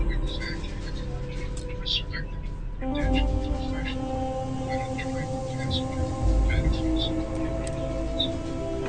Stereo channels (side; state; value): both; identical; correlation 1.00